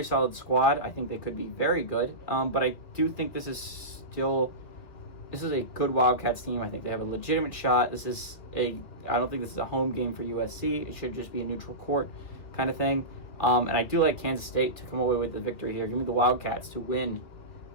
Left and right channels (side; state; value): right; late; 2.6 ms